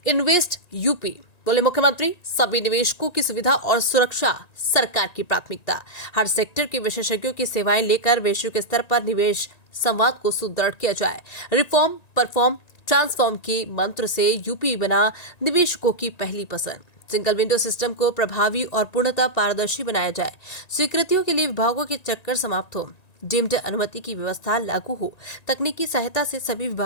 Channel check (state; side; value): late; right; 1.9 ms